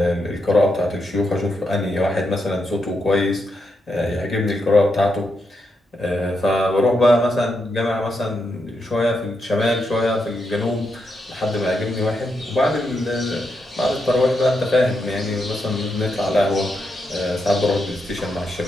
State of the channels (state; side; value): normal; both; correlation 0.83